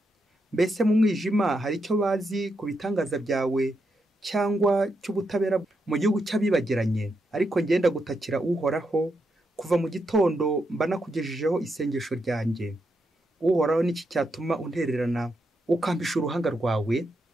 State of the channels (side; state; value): both; normal; correlation 0.83